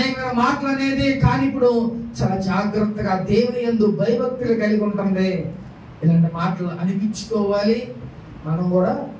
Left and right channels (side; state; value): both; identical; correlation 1.00